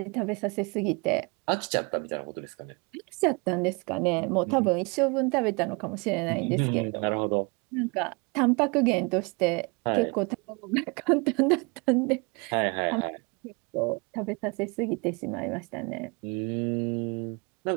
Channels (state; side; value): quieter; left; 30.7 dB